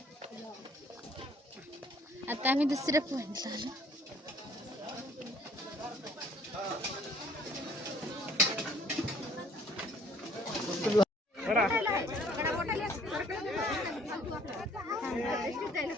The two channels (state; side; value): normal; both; correlation 0.58